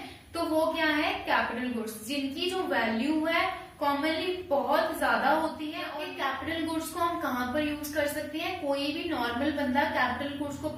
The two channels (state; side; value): identical; both; correlation 1.00